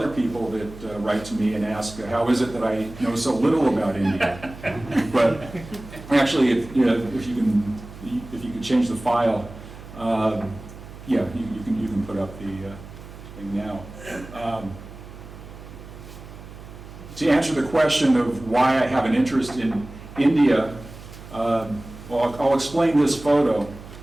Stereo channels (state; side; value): noise; right; hum, 16 dB below the sound